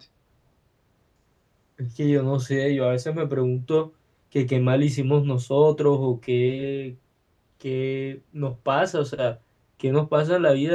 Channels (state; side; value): identical; both; correlation 1.00